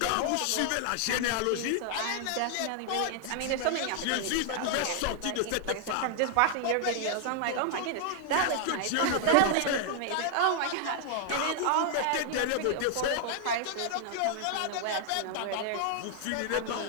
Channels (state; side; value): different; both; correlation 0.00